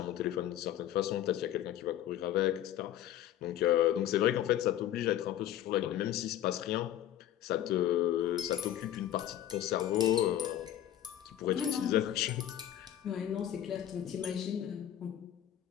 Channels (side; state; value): right; quieter; 11.7 dB